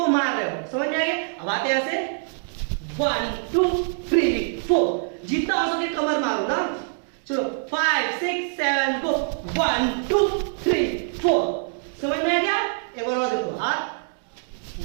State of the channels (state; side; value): silent; left; digital silence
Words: मार रहे हो, समझ में आ गया? अब आते ऐसे 1 2 3 4। जितना हो सके कमर मारो ना। चलो 5 6 7 गो 1 2 3 4। समझ में आ गया? एक बार और देखो, हाथ